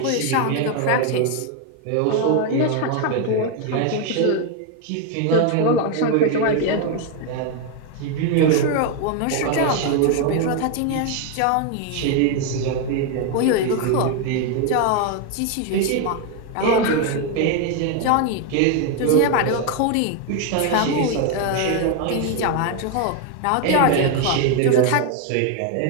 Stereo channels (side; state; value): both; different; correlation 0.01